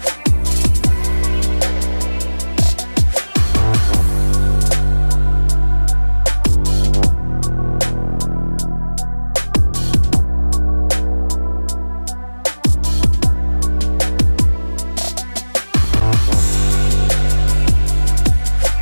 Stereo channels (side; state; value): both; inverted; correlation -1.00